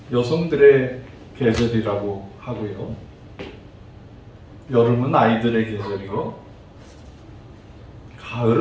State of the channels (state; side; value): identical; both; correlation 1.00